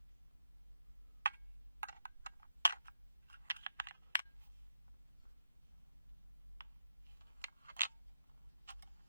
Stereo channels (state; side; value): inverted; both; correlation -0.78